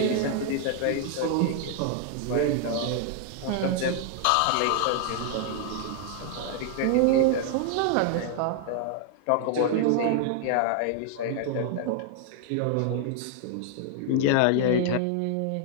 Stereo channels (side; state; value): both; different; correlation 0.00